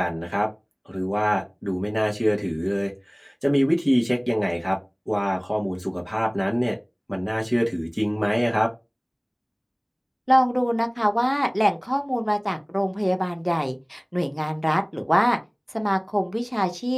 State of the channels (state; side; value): identical; both; correlation 1.00